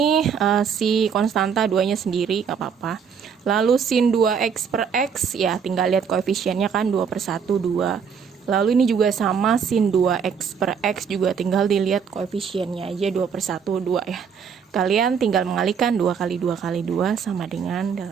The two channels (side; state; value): left; quieter; 6.8 dB